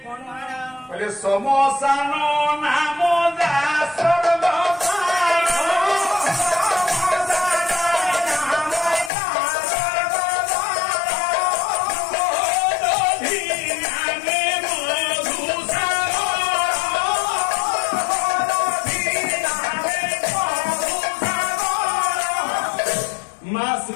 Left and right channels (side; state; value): right; drops out; at 9.1 s